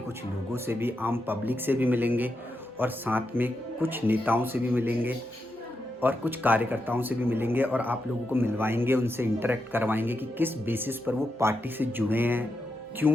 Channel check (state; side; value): normal; both; correlation 0.86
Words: लोगों से भी, आम पब्लिक से भी मिलेंगे और साथ में कुछ नेताओं से भी मिलेंगे और कुछ कार्यकर्ताओं से भी मिलेंगे और आप लोगों को मिलवाएंगे, उनसे इंटरेक्ट करवाएंगे कि किस बेसिस पर वो पार्टी से जुड़े हैं,